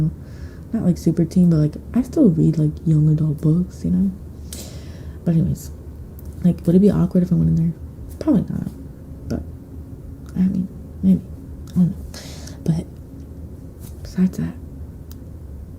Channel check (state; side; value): identical; both; correlation 1.00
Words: Not like super teen, but like I still read like young adult books, you know? But anyways, like would it be awkward if I went in there? Probably not. But I mean, maybe. I don't know. But besides that,